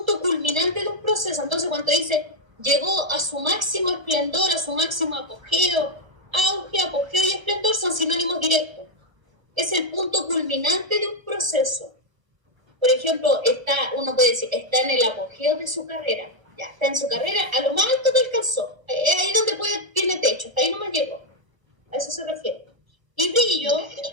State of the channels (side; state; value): left; late; 1.1 ms